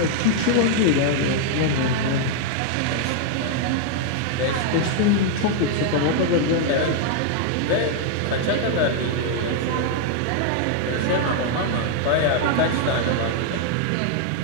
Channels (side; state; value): both; different; correlation 0.00